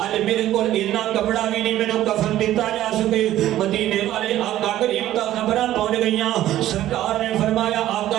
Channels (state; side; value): quieter; left; 13.4 dB